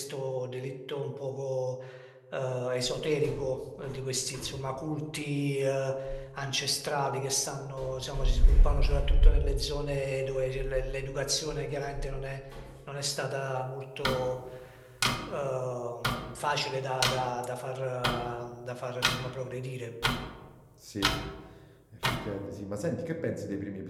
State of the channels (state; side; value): identical; both; correlation 1.00